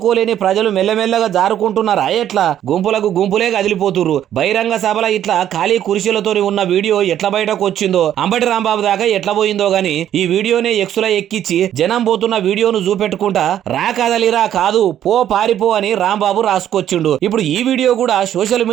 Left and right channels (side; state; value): left; quieter; 10.9 dB